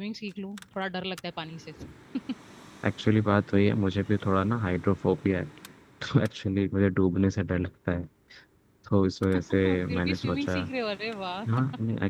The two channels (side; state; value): both; identical; correlation 1.00